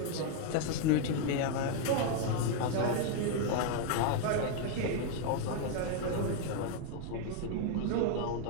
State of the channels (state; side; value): different; both; correlation 0.00